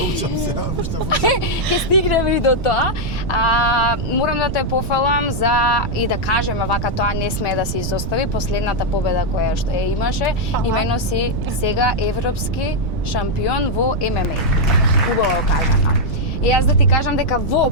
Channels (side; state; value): right; noise; rumble, 4 dB below the sound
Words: учам се, уште Ќе стигнеме и до тоа. Морам да те пофалам и да кажеме вака, тоа не смее да се изостави. Последната победа која што ја имаше, имено си сега европски шампион во ММА. Убаво кажано. И јас да ти кажам дека